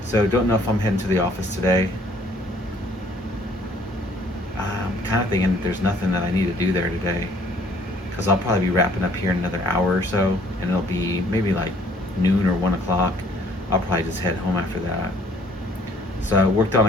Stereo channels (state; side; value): normal; both; correlation 0.59